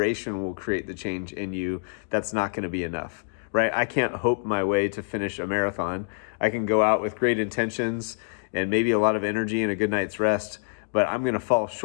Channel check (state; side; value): silent; right; digital silence